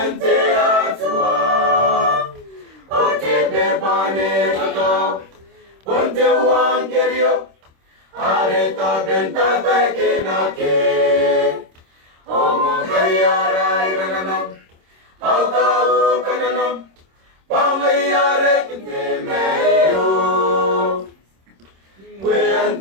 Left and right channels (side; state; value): left; late; 26 ms